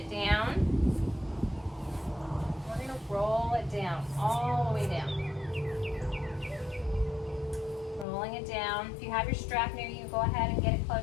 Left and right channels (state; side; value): drops out; right; at 8.1 s